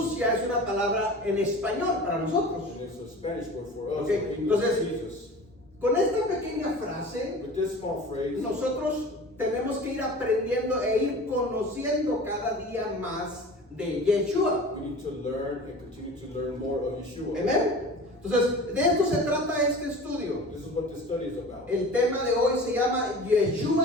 ya es una palabra en español para nosotros. And it's a Spanish word for us. Okay, In English, entonces- Jesus. Con esta pequeña frase, With this small phrase, nosotros tenemos que ir aprendiendo e ir conociendo cada día más de Yeshua. we need to learn and continue to learn more of Yeshua. Amén. Entonces, de esto se trata este estudio. This is what this study is about. El tema de hoy se llama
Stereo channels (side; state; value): both; normal; correlation 0.38